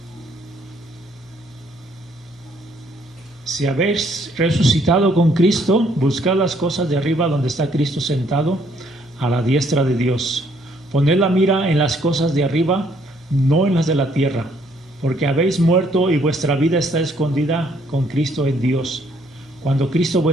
Si habéis resucitado con Cristo, buscad las cosas de arriba donde está Cristo sentado a la diestra de Dios. Poned la mira en las cosas de arriba, no en las de la tierra, porque habéis muerto y vuestra vida está escondida con Cristo en Dios. Cuando Cristo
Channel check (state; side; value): normal; both; correlation 0.66